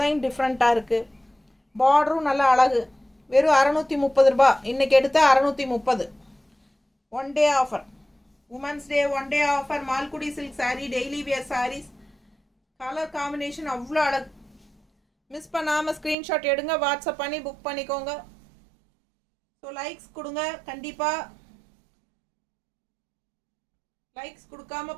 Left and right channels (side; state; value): left; drops out; at 16.2 s